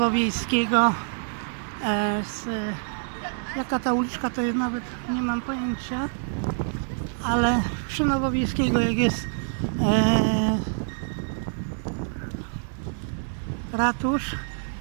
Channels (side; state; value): left; silent; digital silence